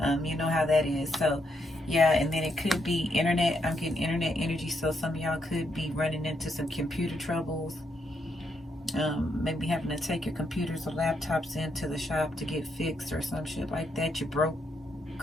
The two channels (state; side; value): normal; both; correlation 0.78